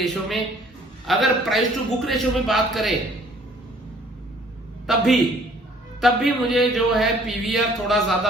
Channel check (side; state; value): both; normal; correlation 0.57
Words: में। अगर प्राइस टू बुक रेशो में बात करें तब भी मुझे जो है पीवीआर थोड़ा ज्यादा